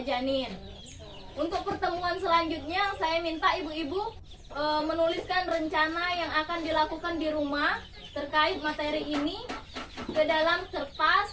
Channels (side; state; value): both; identical; correlation 1.00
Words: janin. Untuk pertemuan selanjutnya, saya minta ibu-ibu menuliskan rencana yang akan dilakukan di rumah terkait materi ini ke dalam